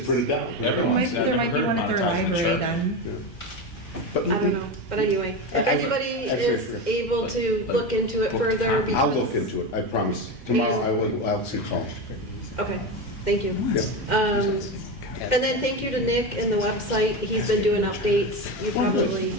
print it down. Everyone's- I've there never might be heard one at their monetizing the library charter. then. But I don't know, but anyway, if anybody is able to look into it further. I'll because- look into it, I promise. Tomorrow I'll see call. Okay, thank you. Yep. And then thank you to Nick and the website. He's been doing updates. You probably,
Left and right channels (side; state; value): right; late; 2.1 ms